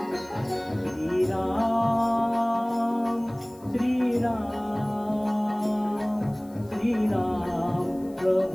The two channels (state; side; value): noise; left; hiss, 27 dB below the sound